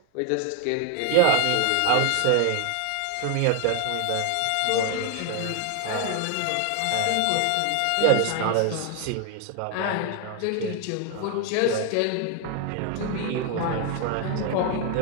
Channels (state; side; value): different; both; correlation 0.00